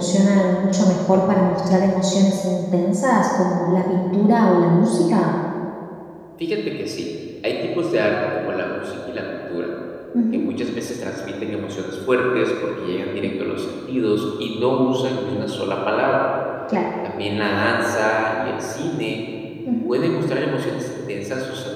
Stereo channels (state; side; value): identical; both; correlation 1.00